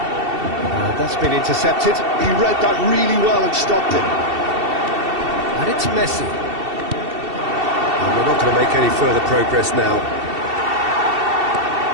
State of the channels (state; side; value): late; left; 2.7 ms